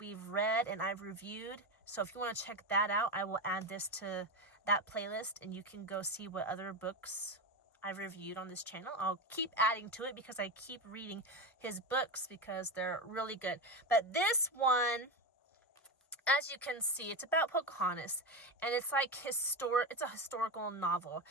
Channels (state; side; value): normal; both; correlation 0.16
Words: read and I've reviewed. So if you want to check that out, I will add this to that playlist and you can go see what other books I've reviewed on this channel. I'll keep adding to it because I keep reading his books because they're really good. But this one, as you can see, it's about Pocahontas, and it's like it's a historical novel.